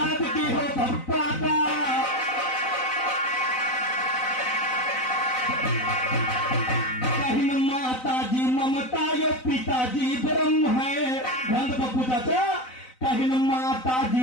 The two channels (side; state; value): right; late; 4.0 ms